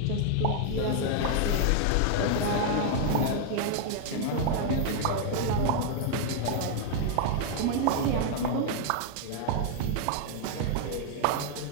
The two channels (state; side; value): different; both; correlation 0.00